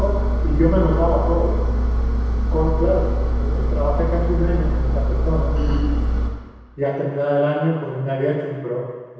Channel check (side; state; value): both; identical; correlation 1.00